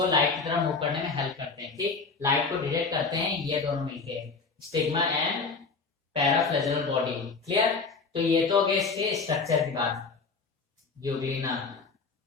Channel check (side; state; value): right; quieter; 4.6 dB